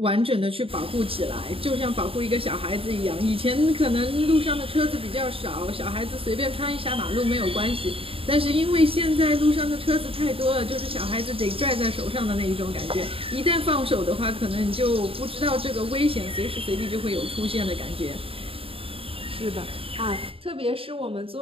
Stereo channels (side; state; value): left; late; 0.27 ms